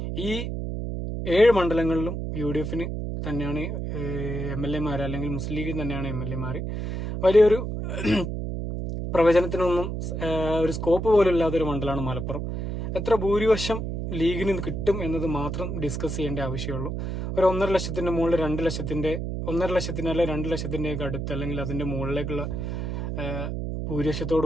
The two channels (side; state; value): right; noise; hum, 3 dB below the sound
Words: ഈ 7 മണ്ഡലങ്ങളിലും UDFന് തന്നെയാണ് MLA മാർ, അല്ലെങ്കിൽ മുസ്ലിം ലീഗിന് തന്നെയാണ് MLA മാർ. വലിയൊരു പ്രവചനത്തിനൊന്നും ഒരു സ്കോപ്പ് പോലും ഇല്ലാത്തൊരു മണ്ഡലമാണ് മലപ്പുറം. എത്ര ഭൂരിപക്ഷം ലീഗിന് കിട്ടും എന്നത് മാത്രം ഡിസ്കസ് ചെയ്യേണ്ട ആവശ്യമുള്ളൂ. ഒരു 1.5 ലക്ഷത്തിൻ്റെ മുകളിൽ 2 ലക്ഷത്തിൻ്റെ 1.5 ലക്ഷത്തിൻ്റെ അല്ലെങ്കിൽ 2 ലക്ഷത്തിൻ്റെയൊക്കെ അടുത്ത് അല്ലെങ്കിൽ അതിൻ്റെ മുകളിലേക്കുള്ള